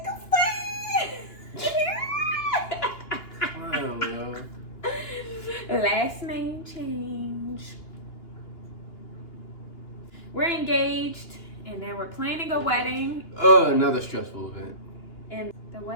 Wow, yo. Last name change. We're engaged, and then we're planning a wedding. Another stressful event. And the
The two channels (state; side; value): late; right; 2.9 ms